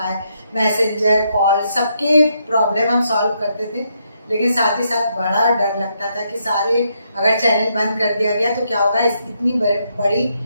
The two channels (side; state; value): both; inverted; correlation -0.77